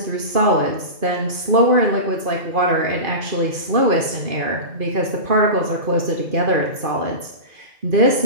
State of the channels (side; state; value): left; late; 2.5 ms